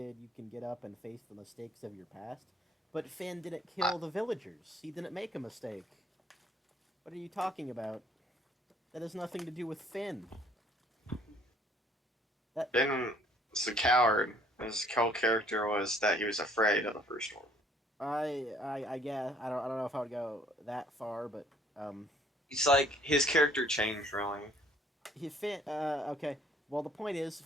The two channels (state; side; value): normal; both; correlation 0.60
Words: you can get up and face the mistakes of your past. But Finn didn't kill the villagers. He didn't make a mistake. What are you talking about? That has nothing to do with Finn. Finn was a coward. His whole character was that he was afraid of the first one. I guess I don't know if I would go that far, but It's like his character changed really. Okay. Well, the point is,